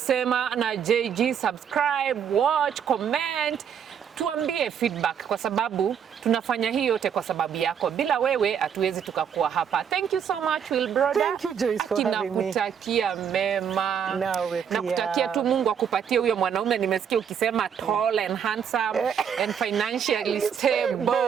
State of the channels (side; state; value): left; quieter; 8.0 dB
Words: na JG, subscribe, watch, comment. Tuambie feedback kwa sababu tunafanya hii yote kwa sababu yako. Bila wewe hatuwezi tukakuwa hapa. Thank you so much, Wilbrodah. Thank you, Joyce, for having me. Nakutakia mema. Nawe pia. Nakutakia tu Mungu akupatie huyo mwanaume nimesikia ukisema tall and handsome and financially